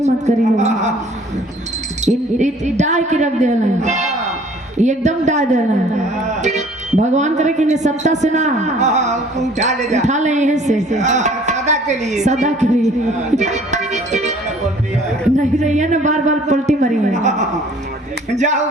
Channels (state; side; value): normal; both; correlation 0.54